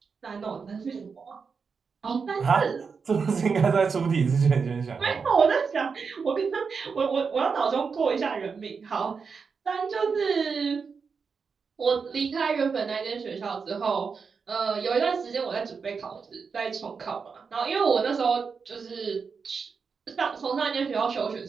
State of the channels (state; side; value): quieter; left; 5.4 dB